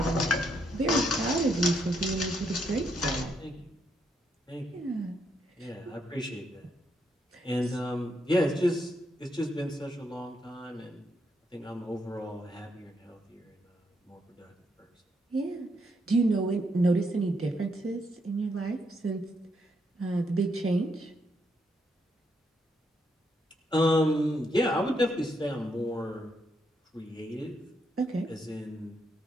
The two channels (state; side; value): normal; both; correlation 0.77